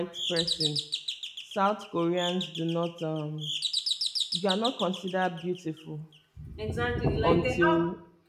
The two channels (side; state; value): both; identical; correlation 1.00